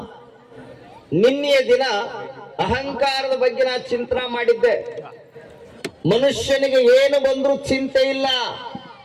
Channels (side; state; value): both; identical; correlation 1.00